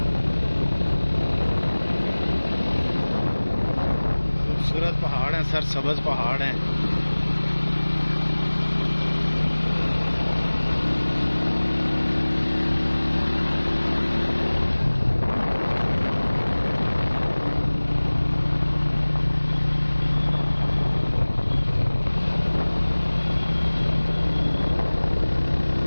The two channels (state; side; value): inverted; both; correlation -1.00